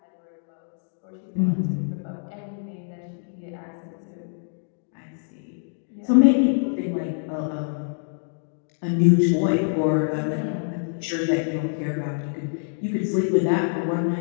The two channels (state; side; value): silent; right; digital silence